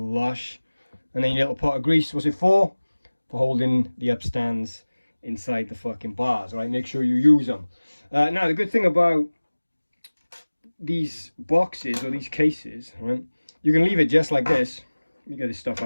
and then your little pot of grease. What's it for? For holding the upstands inside the fucking bars, right? Make sure you use them. Now, the good thing about these boxes or these cases, right? You can leave it just like this. Let me get this stuff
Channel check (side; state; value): both; inverted; correlation -1.00